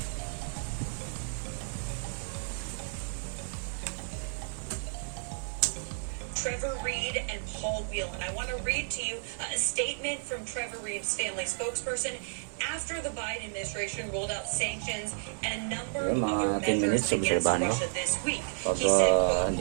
Trevor Reed and Paul Whelan. I want to read to you a statement from Trevor Reed's family spokesperson after the Biden administration rolled out sanctions and a number of other 10 measures minutes, against obserbahan mo. Russia this week. Pag He said, quote,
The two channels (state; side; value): silent; left; digital silence